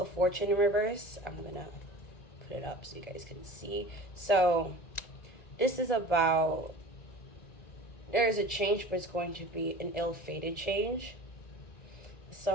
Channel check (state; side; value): late; right; 1.8 ms